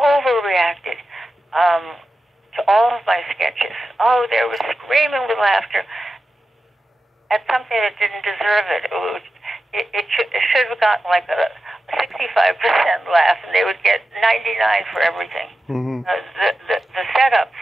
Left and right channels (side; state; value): both; normal; correlation 0.92